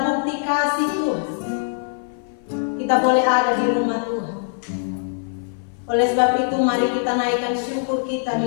bukti kasih Tuhan. Kita boleh ada di rumah Tuhan. Oleh sebab itu mari kita naikkan syukur kita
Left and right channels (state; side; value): silent; right; 55 dB below the other